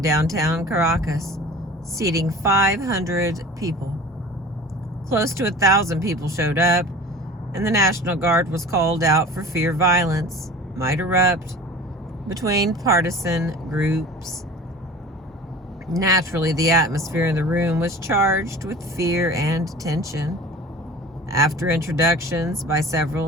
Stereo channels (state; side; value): normal; both; correlation 0.40